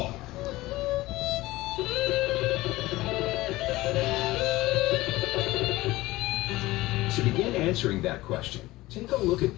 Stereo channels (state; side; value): quieter; right; 18.6 dB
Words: To begin answering that question, take a look at